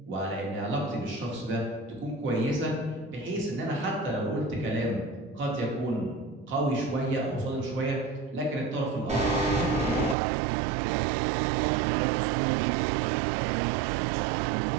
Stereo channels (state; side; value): drops out; left; at 10.2 s